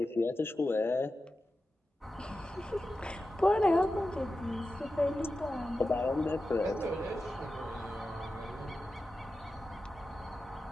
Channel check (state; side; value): normal; both; correlation 0.92